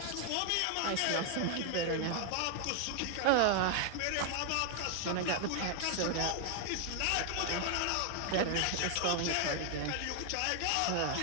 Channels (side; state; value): both; different; correlation 0.00